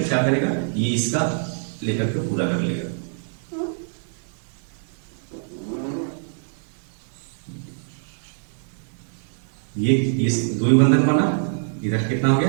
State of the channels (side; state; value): left; silent; digital silence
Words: क्या करेगा, ये इसका लेकर के पूरा कर लेगा। ये दो ही बंधन बना, इधर कितना हो गया,